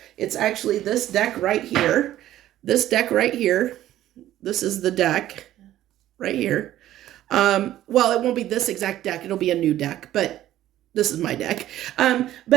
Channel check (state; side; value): quieter; left; 13.3 dB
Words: It's actually this deck right here. This deck right here. This is the deck right here. Well, it won't be this exact deck. It'll be a new deck, but this is my deck.